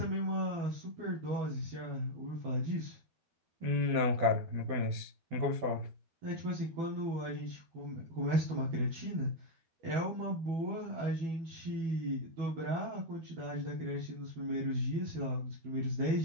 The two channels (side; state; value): left; late; 12 ms